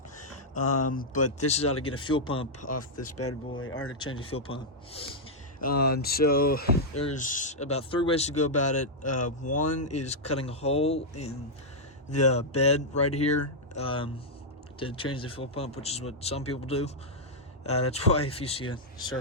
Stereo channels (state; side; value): normal; both; correlation -0.05